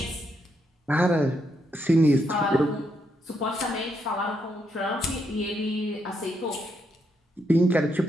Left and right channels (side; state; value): both; normal; correlation 0.78